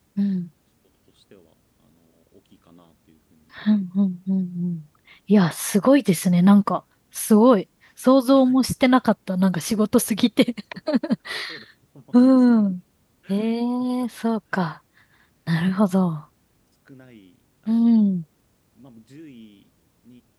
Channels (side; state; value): both; identical; correlation 1.00